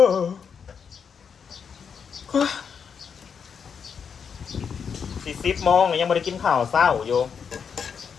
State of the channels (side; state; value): right; quieter; 6.6 dB